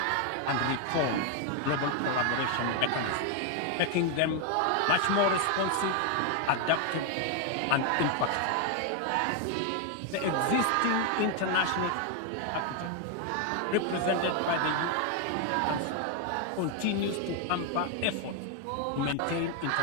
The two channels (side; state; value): both; different; correlation 0.01